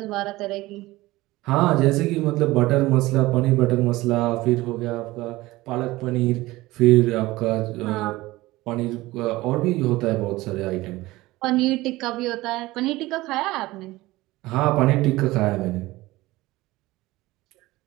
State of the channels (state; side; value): quieter; left; 19.0 dB